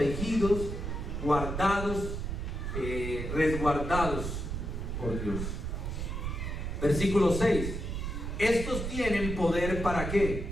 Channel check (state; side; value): noise; right; rumble, 4 dB below the sound